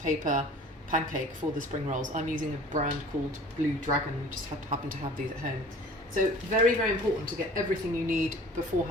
pancake for the spring rolls. I'm using a brand called Blue Dragon. We just happen to have these at home. So very, very important to get everything you need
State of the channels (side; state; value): both; normal; correlation 0.46